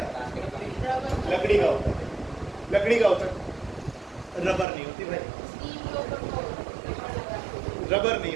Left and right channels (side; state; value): left; drops out; at 4.7 s